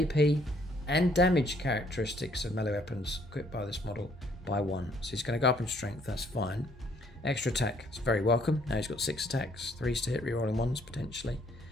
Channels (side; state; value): both; normal; correlation 0.64